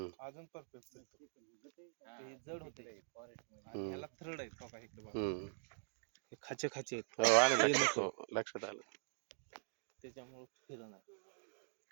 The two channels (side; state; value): left; silent; digital silence